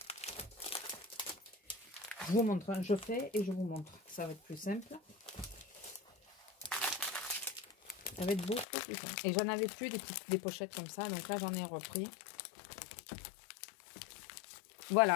Je vous montre, hein, je fais et je vous montre. Ça va être plus simple. Ça va être beaucoup plus simple. Et j'en avais plus des pochettes comme ça. Donc là, j'en ai repris.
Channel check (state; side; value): drops out; right; at 8.7 s